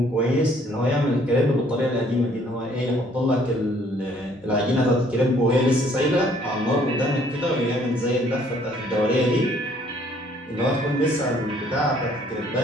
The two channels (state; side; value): normal; both; correlation 0.61